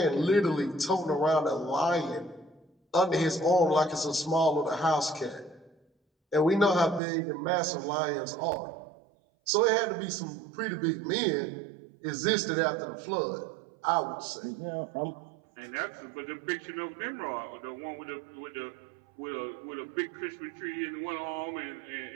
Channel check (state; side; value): drops out; left; at 7.0 s